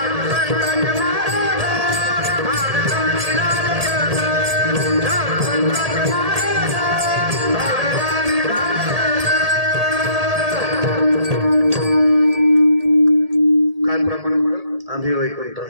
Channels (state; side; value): late; left; 1.8 ms